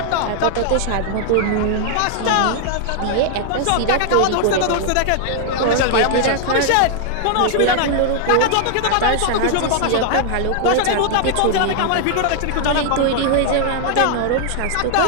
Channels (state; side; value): different; both; correlation 0.00